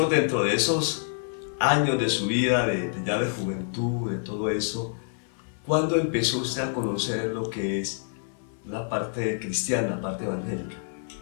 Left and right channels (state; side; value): silent; right; 60 dB below the other